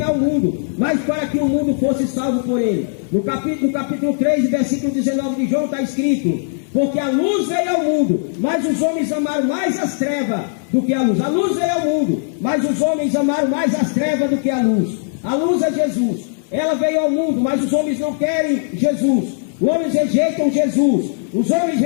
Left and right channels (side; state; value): right; silent; 67 dB below the other